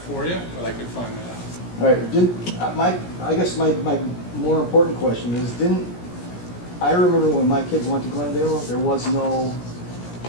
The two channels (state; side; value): late; right; 17 ms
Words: you, but I could find that out. All right, I guess my more important question is, I remember when my kids went to Glendale, there was no